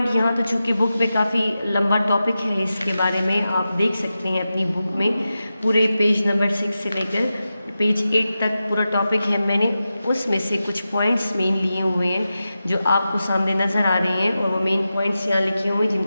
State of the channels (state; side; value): inverted; both; correlation -0.92